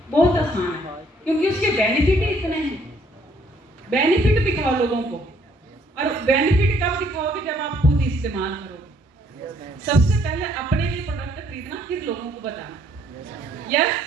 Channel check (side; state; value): both; normal; correlation 0.65